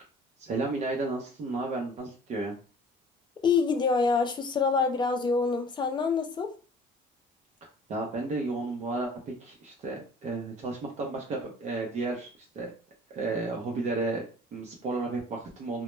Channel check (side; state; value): both; normal; correlation 0.48